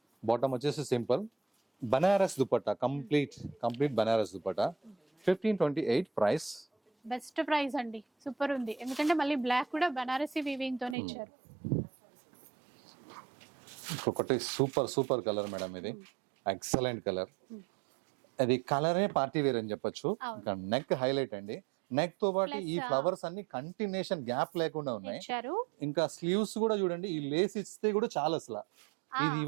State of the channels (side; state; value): left; drops out; at 11.0 s